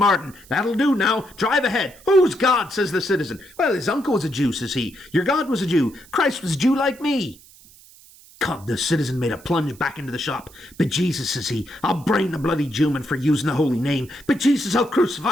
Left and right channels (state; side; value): noise; right; hiss, 24 dB below the sound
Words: That'll do now. Drive ahead. Who's God, says the citizen. Well, his uncle was a Jew, says he. Your God was a Jew. Christ was a Jew like me. God, the citizen made a plunge back into the shop. But Jesus, says he, I'll brain the bloody Jewman for using the holy name. But Jesus, I'll